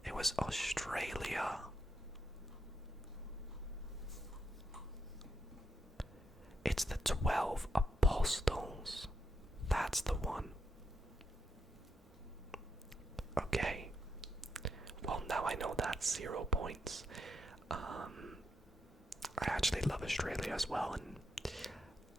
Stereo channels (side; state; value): both; normal; correlation 0.81